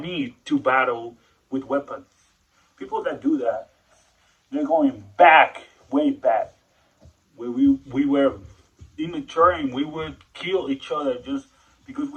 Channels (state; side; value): identical; both; correlation 1.00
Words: to battle with weapons. People that do that, they're going back, way back, where we were immature and we would kill each other just because